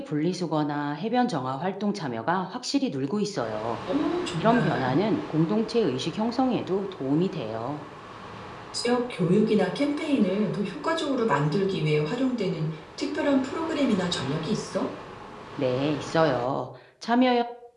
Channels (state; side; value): identical; both; correlation 1.00